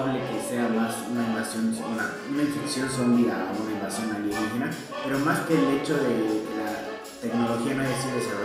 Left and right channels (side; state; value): both; identical; correlation 1.00